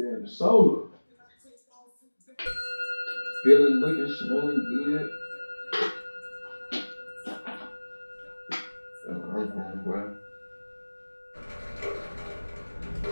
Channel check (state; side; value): inverted; both; correlation -1.00